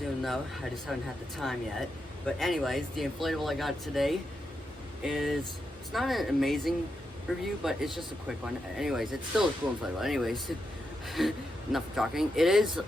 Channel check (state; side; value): normal; both; correlation 0.85